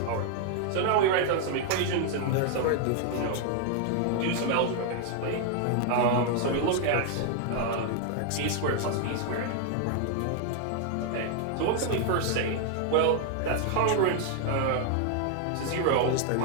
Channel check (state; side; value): different; both; correlation 0.00